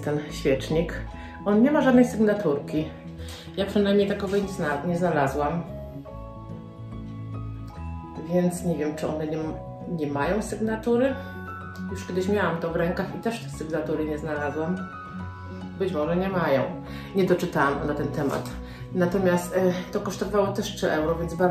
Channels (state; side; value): identical; both; correlation 1.00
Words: ten świecznik. On nie ma żadnej sygnaturki. Ja przynajmniej takowej nie znalazłam. Więc nie wiem, czy one nie mają sygnatury. Już kiedyś miałam to w rękach i też tej sygnatury nie znalazłam. Być może nie mają. Nie doczytałam na ten temat. Natomiast to kosztowało też 3 euro, więc